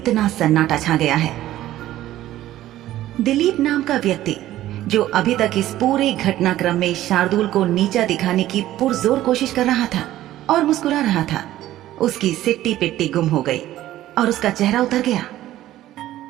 सन्नाटा छा गया है। दिलीप नाम का व्यक्ति, जो अभी तक इस पूरे घटनाक्रम में शार्दुल को नीचा दिखाने की पुरजोर कोशिश कर रहा था और मुस्कुरा रहा था, उसकी सिट्टी पिट्टी गुम हो गई और उसका चेहरा उतर गया।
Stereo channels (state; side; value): quieter; left; 14.1 dB